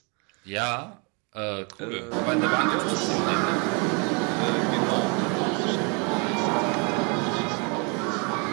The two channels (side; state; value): left; quieter; 33.0 dB